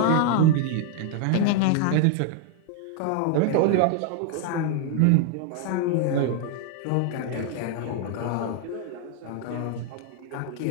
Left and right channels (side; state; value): both; different; correlation 0.00